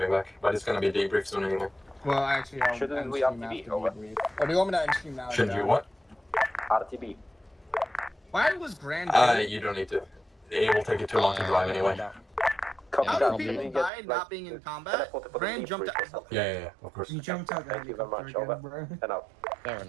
back. But it's gonna be debriefed soon anyway. Well, actually, I'll Shouldn't end we stream RTB after over? debrief. Or do you want me to end stream now? Shouldn't Yeah. you what? RTB. Why was Grand? You don't need to. It will take you too long to drive anyway. Copy How that. do We people get, die like, not being in combat? teleported for the Grand jumped debrief or out. something. Yeah, of course. You jumped out the Thank you very much. helicopter Over. again, bro. And out. Fair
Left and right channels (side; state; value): left; drops out; at 13.9 s